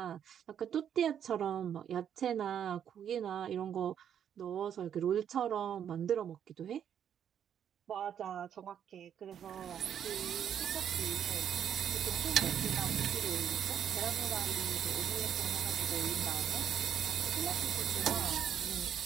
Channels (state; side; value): quieter; left; 9.1 dB